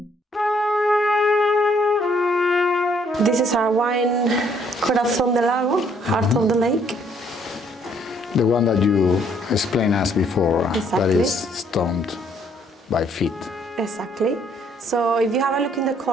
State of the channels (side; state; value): both; normal; correlation 0.66